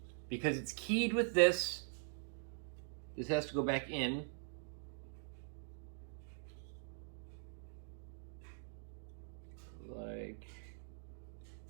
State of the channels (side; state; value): left; silent; digital silence